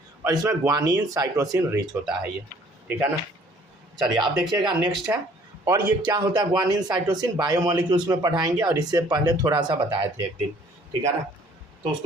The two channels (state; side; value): normal; both; correlation 0.57